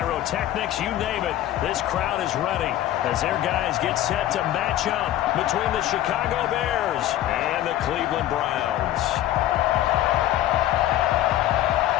you name it. This crowd is ready as their guys get set to match up between the Chicago Bears and the Cleveland Browns.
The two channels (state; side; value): quieter; right; 13.4 dB